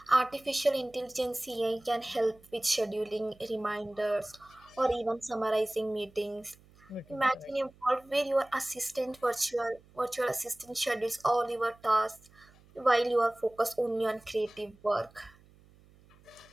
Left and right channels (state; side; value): noise; right; hum, 27 dB below the sound